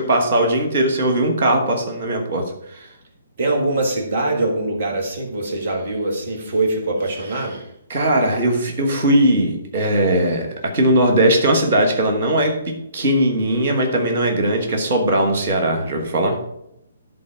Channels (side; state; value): both; inverted; correlation -0.58